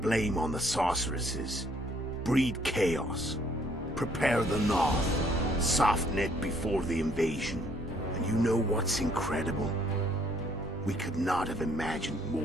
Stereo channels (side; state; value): both; normal; correlation 0.64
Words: on the sorceresses. Breed chaos. Prepare the North. Soften it before the invasion. And you know what's incredible? We could not have imagined